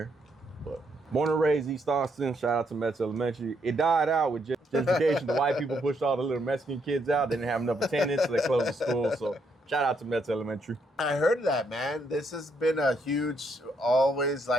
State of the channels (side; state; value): both; normal; correlation 0.75